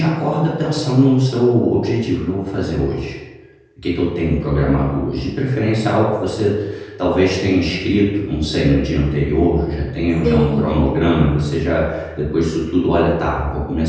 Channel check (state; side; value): identical; both; correlation 1.00